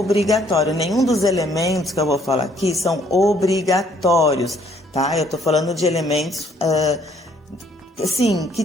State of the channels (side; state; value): both; normal; correlation 0.64